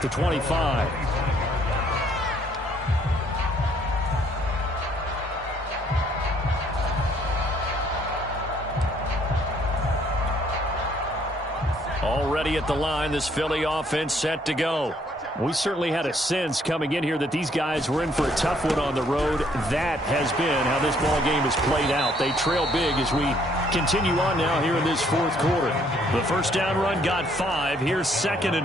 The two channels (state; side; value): normal; both; correlation 0.65